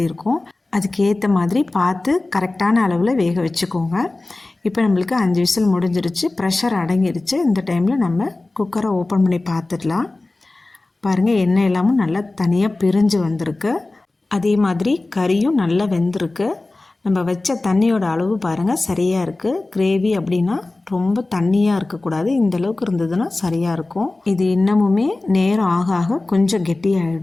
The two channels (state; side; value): quieter; right; 3.0 dB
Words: இருக்கும். அதுக்கேற்ற மாதிரி பார்த்து கரெக்டான அளவில் வேக வச்சுக்கோங்க. இப்போ நம்மளுக்கு 5 விசில் முடிஞ்சிருச்சு, ப்ரெஷர் அடங்கிருச்சு. இந்த டைமில் நம்ம குக்கரை ஓப்பன் பண்ணி பார்த்துடலாம். பாருங்கள், எண்ணெய் எல்லாமும் நல்லா தனியாக பிரிஞ்சு வந்திருக்கு. அதே மாதிரி கறியும் நல்லா வெந்திருக்கு. நம்ம வச்ச தண்ணியோட அளவு பாருங்கள் சரியாக இருக்குது. கிரேவி அப்படின்னா ரொம்ப தண்ணியாக இருக்கக்கூடாது, இந்த அளவுக்கு இருந்ததுன்னா சரியாக இருக்கும். இது இன்னமுமே நேரம் ஆக ஆக கொஞ்சம்